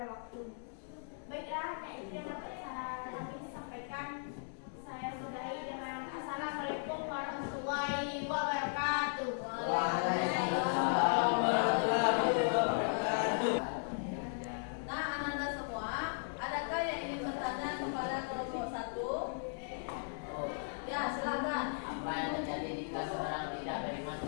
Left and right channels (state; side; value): silent; right; digital silence